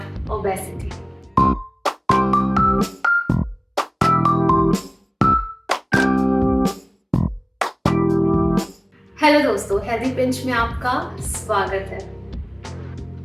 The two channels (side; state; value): both; identical; correlation 1.00